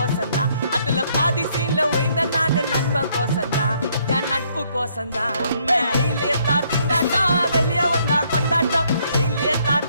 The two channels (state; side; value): inverted; both; correlation -0.68